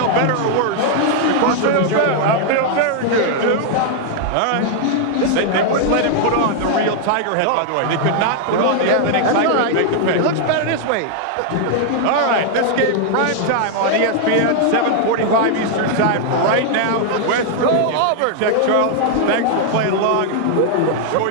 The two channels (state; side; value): different; both; correlation 0.00